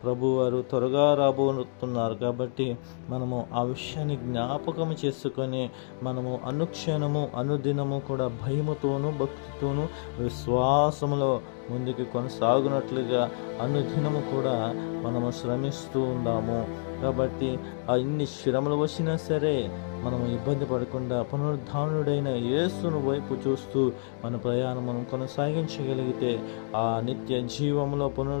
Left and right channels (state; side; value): silent; right; digital silence